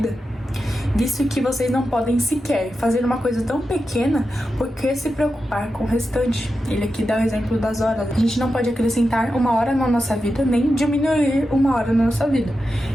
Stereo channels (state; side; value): normal; both; correlation 0.90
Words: Visto que vocês não podem sequer fazer uma coisa tão pequena, por que se preocupar com o restante? Ele aqui dá o exemplo das horas. A gente não pode acrescentar uma hora na nossa vida, nem diminuir uma hora na nossa vida.